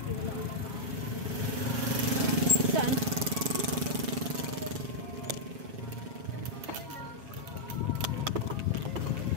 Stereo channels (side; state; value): left; late; 7.3 ms